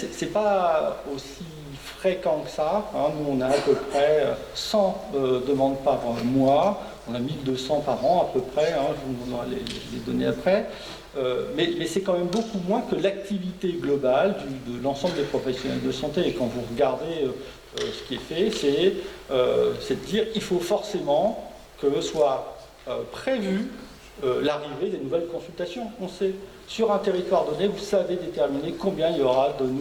pas aussi fréquent que ça. Nous, on a à peu près 100 demandes par mois. On a 1200 par an à peu près, hein, je vous donnerai les données après. Mais c'est quand même beaucoup moins que l'activité globale de l'ensemble des professionnels de santé. Et quand vous regardez ce qui est fait, c'est de dire qu'il faut forcément que soit prévu l'arrivée des nouvelles consultations. On sait, sur un territoire donné, vous savez déterminer combien il y aura de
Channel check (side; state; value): both; identical; correlation 1.00